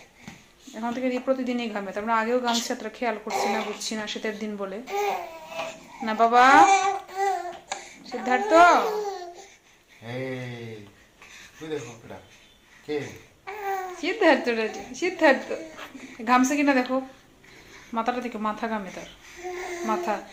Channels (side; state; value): both; identical; correlation 1.00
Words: এখন থেকে প্রতিদিনই ঘামে, তারপরে আগেও ঘামছে, তারা খেয়াল করছি না, বুঝছি না শীতের দিন বলে। না বাবা সিদ্ধার্থ, সিদ্ধার্থ সিদ্ধার্থ ঘামছে কিনা দেখো, মাথাটা থেকে মাথা ঘামে তার, মাথা